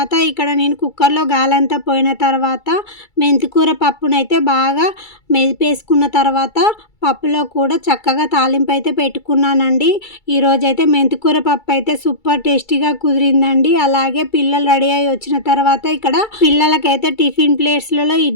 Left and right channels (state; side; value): late; right; 2.3 ms